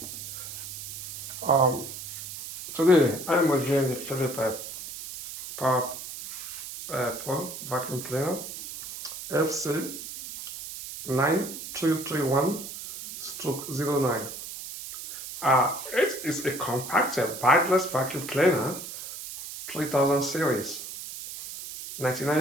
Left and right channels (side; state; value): right; noise; hiss, 10 dB below the sound